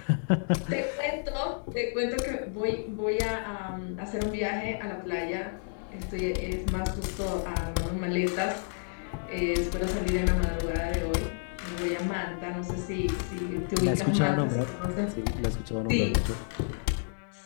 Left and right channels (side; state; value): right; silent; digital silence